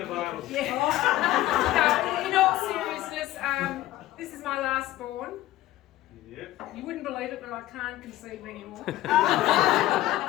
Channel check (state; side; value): quieter; right; 15.3 dB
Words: available. Yeah. No, in all seriousness, this is my last born. Yep. You wouldn't believe it, but I can't conceive anymore.